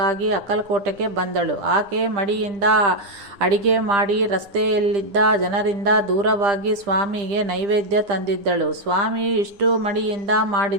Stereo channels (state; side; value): late; left; 10 ms